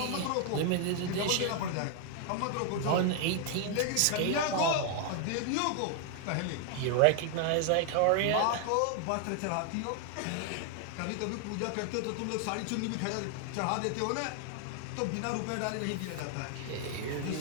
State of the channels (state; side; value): different; both; correlation 0.00